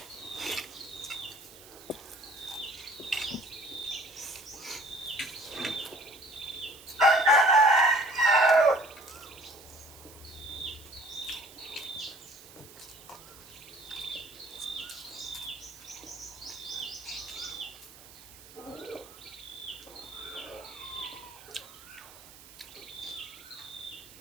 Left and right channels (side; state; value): right; noise; hiss, 19 dB below the sound